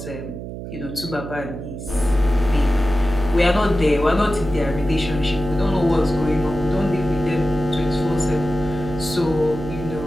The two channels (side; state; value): right; noise; hum, 9 dB below the sound